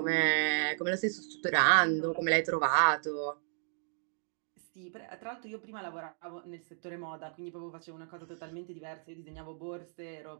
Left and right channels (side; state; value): left; silent; digital silence